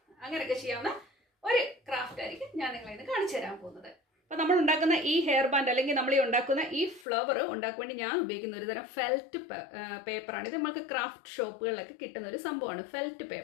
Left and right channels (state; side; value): drops out; right; at 7.1 s